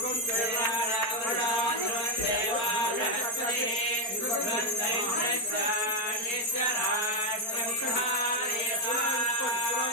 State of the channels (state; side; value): late; right; 4.3 ms